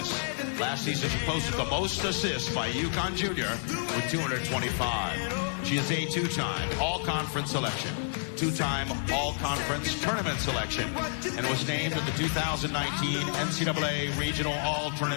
Last season, she posted the most assists by a UConn junior with 225. She is a two-time all-conference selection, two-time all-conference tournament selection, and was named to the 2019 NCAA Regional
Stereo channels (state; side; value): silent; right; digital silence